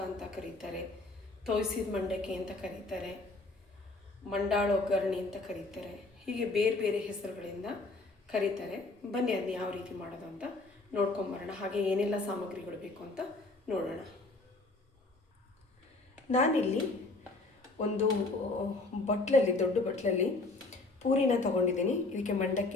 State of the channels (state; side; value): quieter; right; 3.3 dB